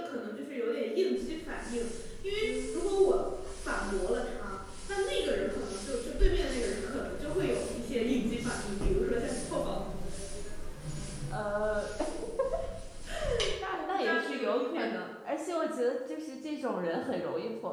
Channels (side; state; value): both; identical; correlation 1.00